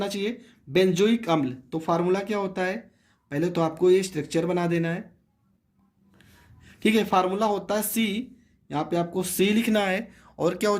चाहिए? बेंजोइक अम्ल। तो फार्मूला क्या होता है? पहले तो आपको ये स्ट्रक्चर बना देना है, ठीक है। फार्मूला होता है C, यहाँ पे आपको C लिखना है। और क्या हो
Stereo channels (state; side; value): identical; both; correlation 1.00